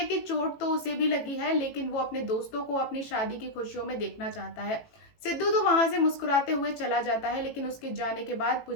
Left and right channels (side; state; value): right; late; 18 ms